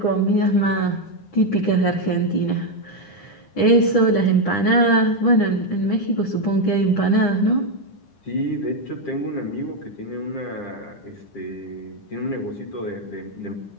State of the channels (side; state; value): right; late; 9.9 ms